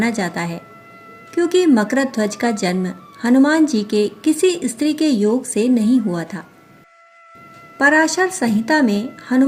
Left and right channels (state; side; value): identical; both; correlation 1.00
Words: जाता है, क्योंकि मकरध्वज का जन्म हनुमान जी के किसी स्त्री के योग से नहीं हुआ था। पराशर संहिता में